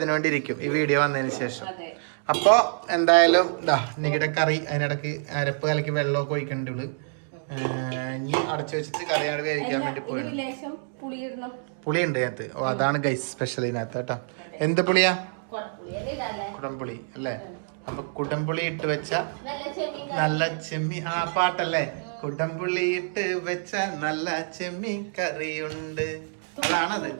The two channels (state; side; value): silent; left; digital silence